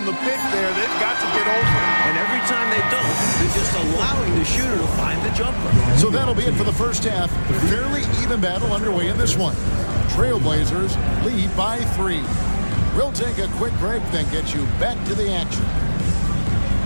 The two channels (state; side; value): inverted; both; correlation -1.00